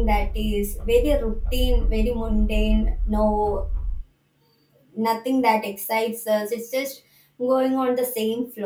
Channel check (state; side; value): identical; both; correlation 1.00